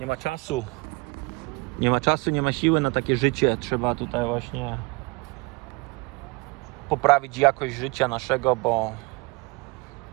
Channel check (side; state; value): left; quieter; 26.8 dB